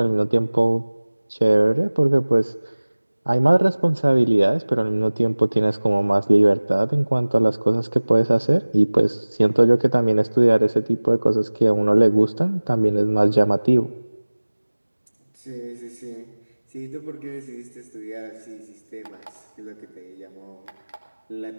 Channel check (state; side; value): inverted; both; correlation -1.00